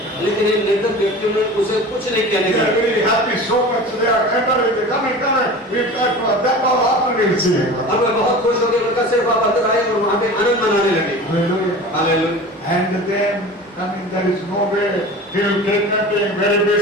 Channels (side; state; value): both; normal; correlation 0.36